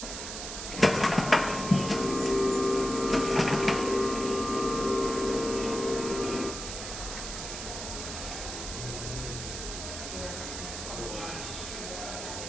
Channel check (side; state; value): right; noise; hiss, 7 dB below the sound